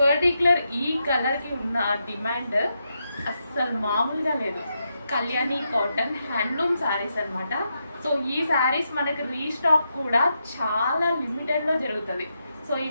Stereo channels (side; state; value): both; inverted; correlation -0.84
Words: ఈ కలర్ కి ఉన్న డిమాండ్ అస్సలు మామూలుగా లేదు. కళ్యాణి కాటన్ హ్యాండ్లూమ్ శారీస్ అనమాట. సో ఈ శారీస్ మనకి రీస్టాక్ కూడా చాలా లిమిటెడ్ లో జరుగుతుంది. సో